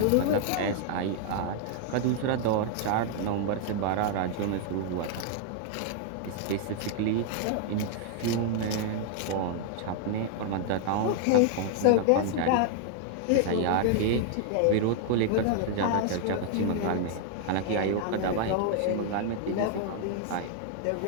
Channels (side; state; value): both; different; correlation 0.00